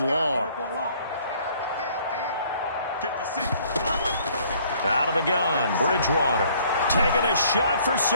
long. 56. Out of the gun, Bridgewater. Taking a shot for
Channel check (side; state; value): both; inverted; correlation -0.59